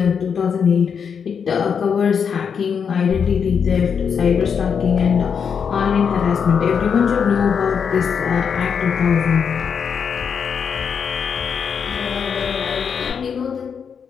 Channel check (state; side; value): quieter; right; 6.8 dB